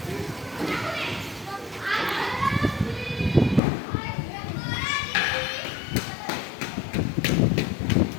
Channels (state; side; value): drops out; right; at 3.6 s